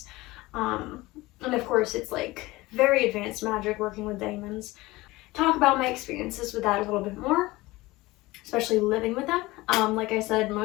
And of course, it's like very advanced magic working with demons. Talk about my experiences with that a little bit more, especially living with them. Like I said,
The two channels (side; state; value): right; quieter; 20.2 dB